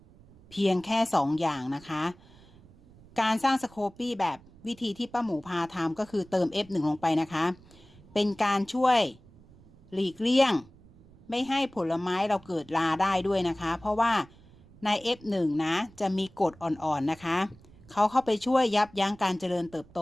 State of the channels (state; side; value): noise; right; rumble, 24 dB below the sound